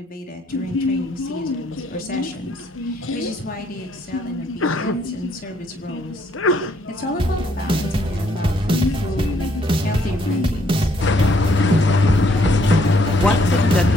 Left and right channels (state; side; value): normal; both; correlation 0.68